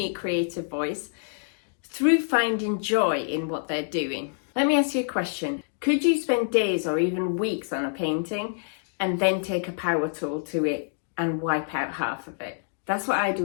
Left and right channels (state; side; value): silent; right; digital silence